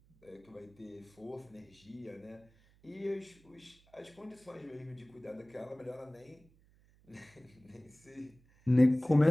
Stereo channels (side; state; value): right; noise; hum, 29 dB below the sound